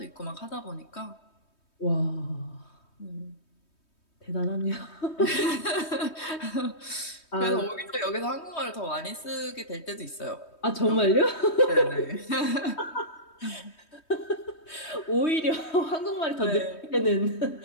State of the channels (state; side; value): late; right; 3.2 ms